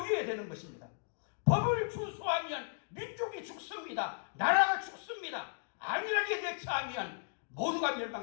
되는 것입니다. 법을 준수하면 민족이 죽습니다. 나라가 죽습니다. 안일하게 대처하면 모두가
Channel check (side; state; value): right; silent; digital silence